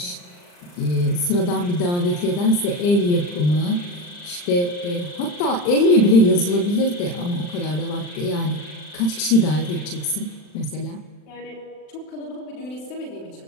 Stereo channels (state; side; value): late; right; 40 ms